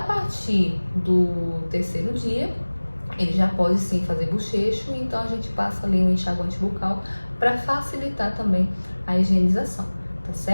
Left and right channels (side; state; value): both; inverted; correlation -1.00